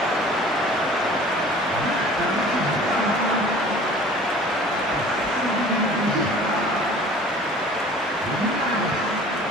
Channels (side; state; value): both; normal; correlation 0.47